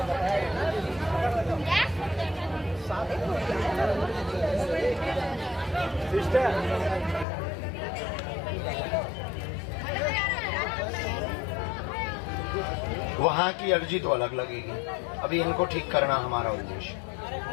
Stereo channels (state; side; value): drops out; right; at 7.2 s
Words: वहां की अर्जी तो अलग लगेगी, अभी इनको ठीक करना हमारा उद्देश्य।